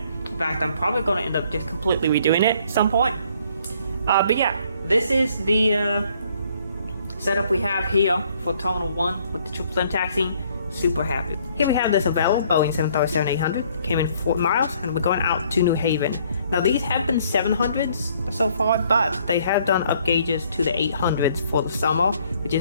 In fact, I'm probably going to end up just completely redoing it at some point. But yeah, this is the setup we have here for Terminal 1 with the 777 taxiing. Super happy. Here we have this available Boeing 737-800. Came in 4 miles and we're going out to New Haven. Now these have been 700s so far, but they have done up gauges to the 800s for the summer, which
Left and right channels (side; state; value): both; inverted; correlation -0.63